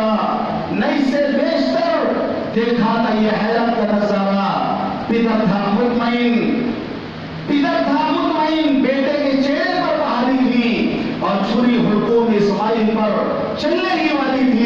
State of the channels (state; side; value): identical; both; correlation 1.00